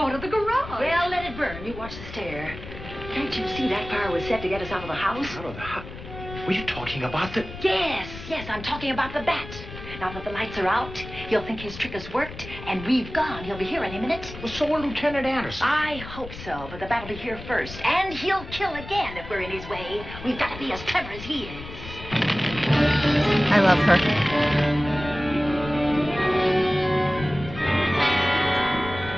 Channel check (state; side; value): noise; left; rumble, 13 dB below the sound